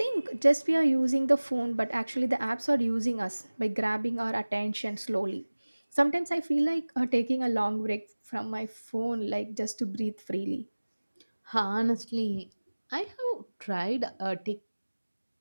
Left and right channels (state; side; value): inverted; both; correlation -1.00